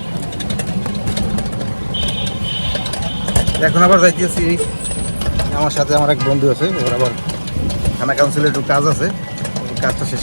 এখন আবার যাইতেছি, আমার সাথে আমার এক বন্ধু আছে, ওর আবার থানা কাউন্সিলে একটু কাজ আছে, কাজটা শেষ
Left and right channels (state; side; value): inverted; both; correlation -1.00